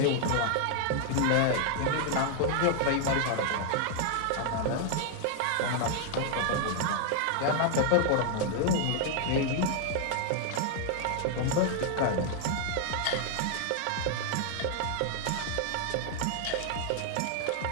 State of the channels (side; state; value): both; different; correlation 0.00